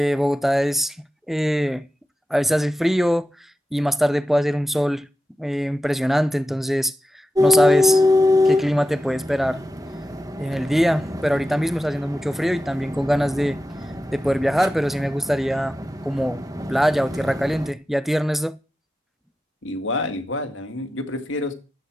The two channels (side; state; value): both; normal; correlation 0.92